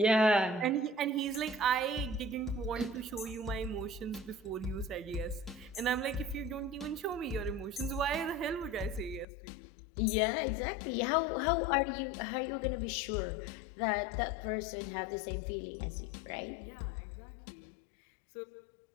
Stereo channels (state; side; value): drops out; right; at 9.2 s